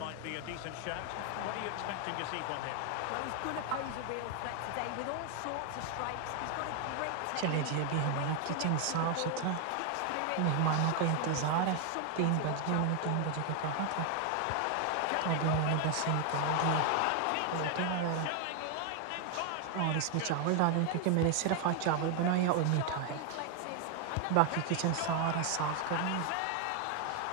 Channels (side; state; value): both; different; correlation 0.00